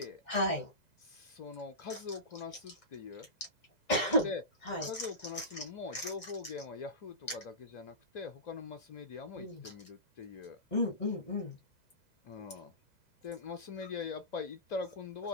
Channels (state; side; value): late; right; 2.0 ms